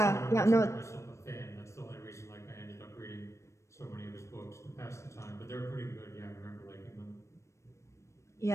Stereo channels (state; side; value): late; right; 0.14 ms